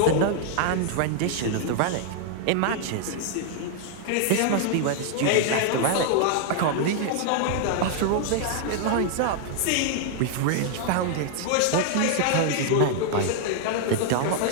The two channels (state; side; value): different; both; correlation 0.00